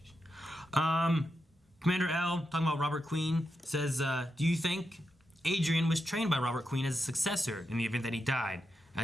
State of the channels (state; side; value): normal; both; correlation 0.87